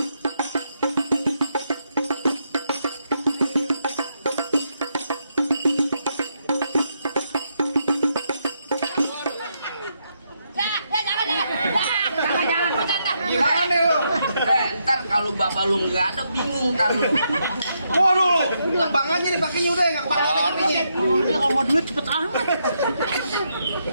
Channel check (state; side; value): inverted; both; correlation -0.79